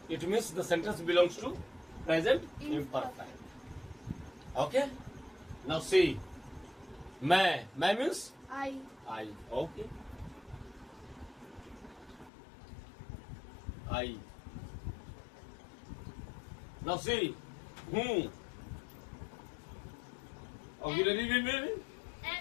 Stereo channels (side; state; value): right; drops out; at 12.3 s